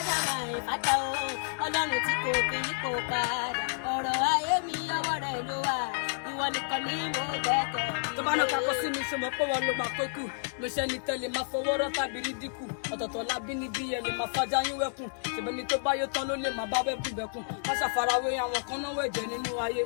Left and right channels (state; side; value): silent; right; 58 dB below the other